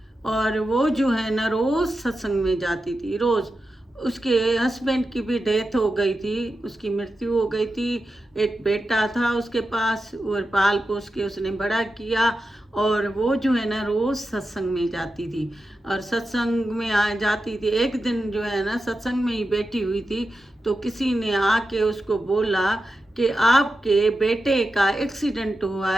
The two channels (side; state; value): both; normal; correlation 0.91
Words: और वो जो है ना रोज सत्संग में जाती थी। रोज उसके हस्बैंड की भी डेथ हो गई थी, उसकी मृत्यु हो गई थी। एक बेटा था उसके पास और पाल पोस के उसने बड़ा किया। और वो जो है ना रोज सत्संग में जाती थी और सत्संग में आ जाती थी। एक दिन जो है ना सत्संग में ही बैठी हुई थी तो किसी ने आके उसको बोला कि आपके बेटे का एक्सीडेंट हुआ